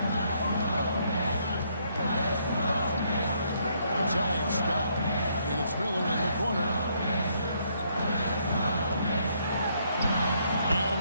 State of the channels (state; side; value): inverted; both; correlation -0.71